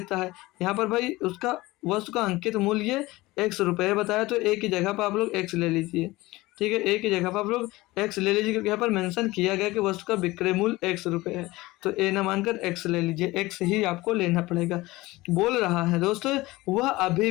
है। यहाँ पर भाई उसका वस्तु का अंकित मूल्य 100 रुपये बताया, तो एक की जगह पर आप लोग x ले लीजिए। ठीक है, ए की जगह पर आप लोग एक्स ले लीजिए क्योंकि यहाँ पर मेंशन किया गया कि वस्तु का विक्रय मूल्य एक्स रुपये है, तो ए न मानकर एक्स ले लीजिए, एक्स ही आपको लेना पड़ेगा। बोल रहा है दोस्तों वह अभी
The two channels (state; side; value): quieter; right; 19.8 dB